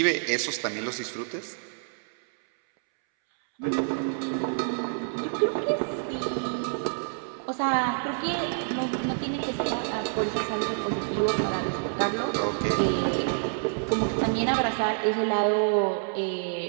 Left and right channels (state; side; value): silent; left; 60 dB below the other